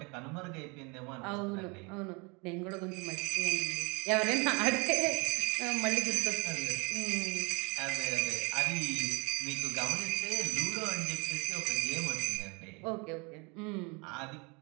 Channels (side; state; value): left; quieter; 29.7 dB